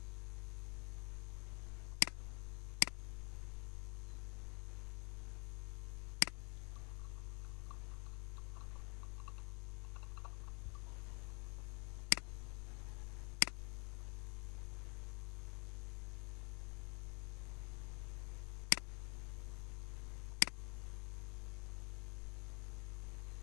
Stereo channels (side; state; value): right; quieter; 32.8 dB